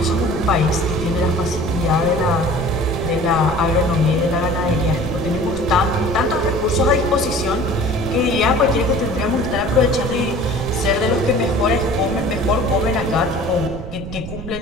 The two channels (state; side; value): noise; right; rumble, 10 dB below the sound